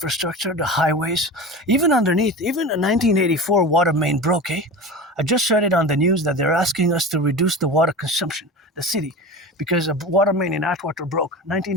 highways, even underneath. Even a 1984 water main broke, I just read it on the news that they're asking us to reduce the water consumption, the city, because a water main in Atwater broke,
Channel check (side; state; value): both; normal; correlation 0.31